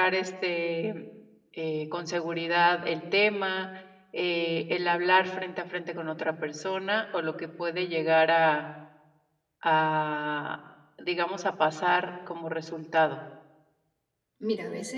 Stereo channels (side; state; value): both; identical; correlation 1.00